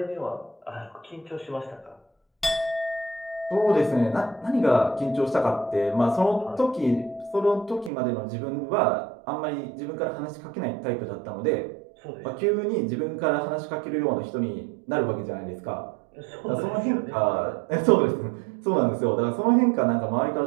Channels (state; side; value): drops out; left; at 7.9 s